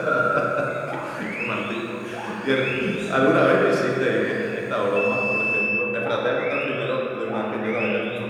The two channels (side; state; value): both; identical; correlation 1.00